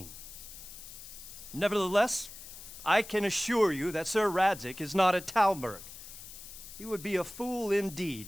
Nevertheless, I can assure you that Sir Radzig is not at Talmberg. He would be a fool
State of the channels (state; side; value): noise; left; hiss, 14 dB below the sound